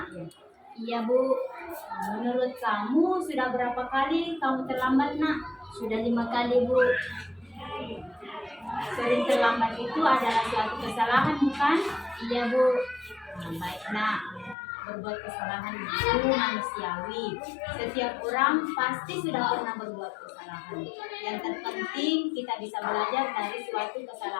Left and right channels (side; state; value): right; drops out; at 14.6 s